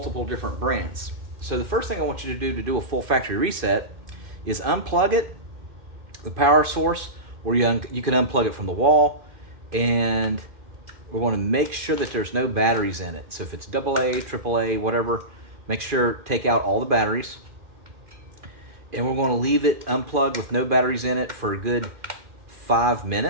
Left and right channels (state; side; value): late; left; 2.4 ms